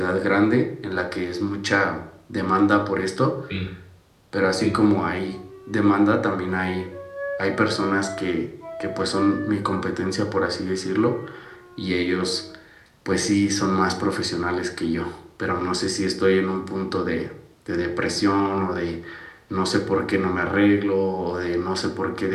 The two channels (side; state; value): both; identical; correlation 1.00